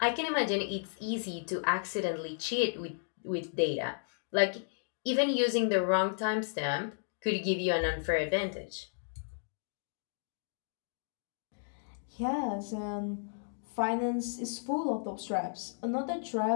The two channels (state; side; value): silent; right; digital silence